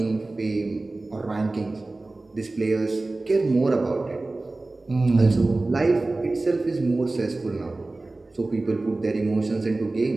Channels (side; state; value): left; quieter; 3.1 dB